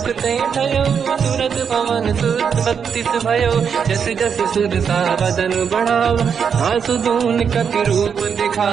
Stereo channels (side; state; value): left; quieter; 6.9 dB